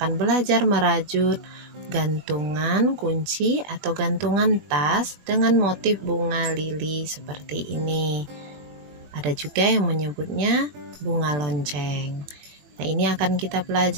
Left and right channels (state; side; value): late; left; 21 ms